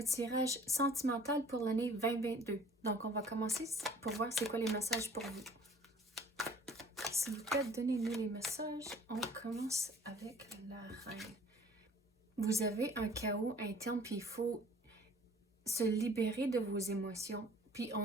tirage sentimental pour l'année 2022. Donc, on va commencer pour voir c'est quoi les messages pour vous. S'il vous plaît, donnez-nous les messages. On commence avec la reine. Vous avez un chaos interne, puis il faut se libérer de vos émotions. Puis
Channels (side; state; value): both; normal; correlation 0.52